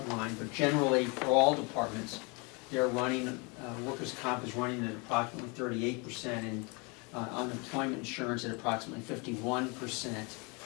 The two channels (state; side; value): quieter; right; 30.7 dB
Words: line, but generally for all departments, they're running, workers' comp is running at approximately 38% and unemployment insurance at approximately 51%.